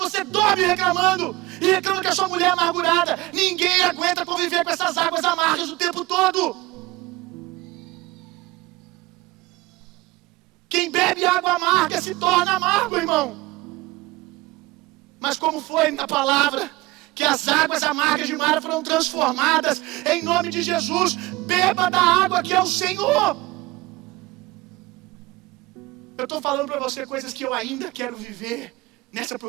você dorme reclamando, e reclama que a sua mulher é amargurada. Ninguém aguenta conviver com essas águas amargas o tempo todo. Quem bebe água amarga se torna amargo, irmão. Mas como foi na palavra, que as águas amargas de Mara foram transformadas, em nome de Jesus, beba da água que é o Senhor. Eu estou falando para você coisas que eu ainda quero viver nessa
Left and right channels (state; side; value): quieter; left; 20.7 dB